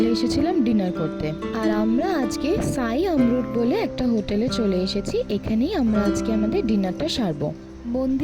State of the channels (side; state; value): both; identical; correlation 1.00